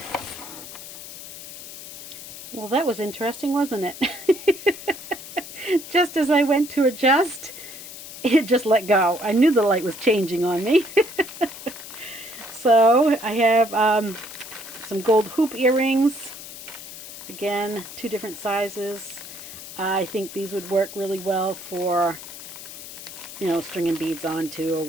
Well, that was interesting, wasn't it? Just as I went to adjust, it just let go. I knew the light was changing on me. So I have some gold hoop earrings. Again, two different sizes. I think these would work really well for, you know, stringing beads onto or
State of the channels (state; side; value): noise; left; hiss, 13 dB below the sound